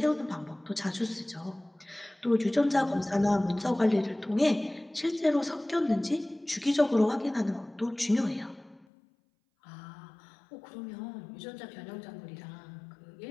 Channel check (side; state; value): right; drops out; at 8.8 s